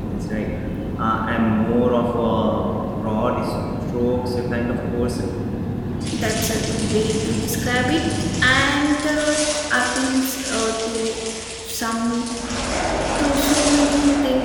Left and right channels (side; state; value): both; identical; correlation 1.00